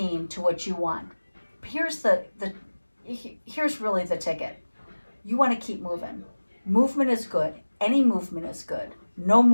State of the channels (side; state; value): both; inverted; correlation -1.00